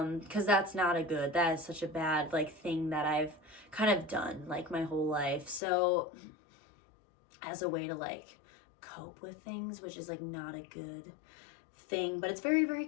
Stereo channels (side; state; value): right; drops out; at 5.6 s